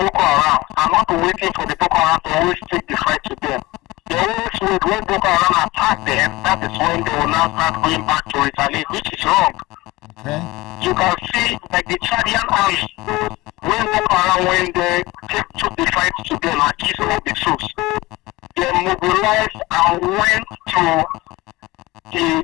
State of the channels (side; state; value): right; quieter; 20.6 dB